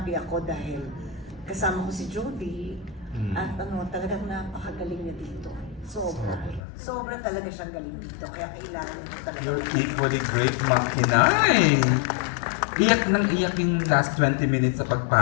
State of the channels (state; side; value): drops out; right; at 6.6 s